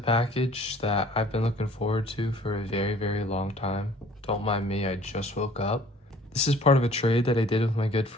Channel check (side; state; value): both; normal; correlation 0.53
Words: that I've been looking forward to for a very, very long time. Don't mind me, I just woke up. This is part of a trade that I did with my good